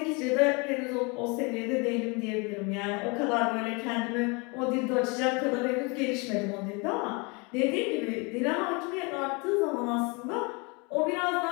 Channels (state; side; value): quieter; right; 29.8 dB